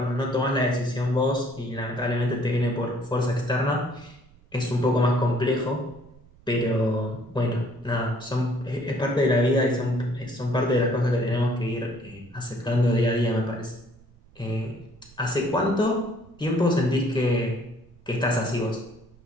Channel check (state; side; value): noise; right; rumble, 26 dB below the sound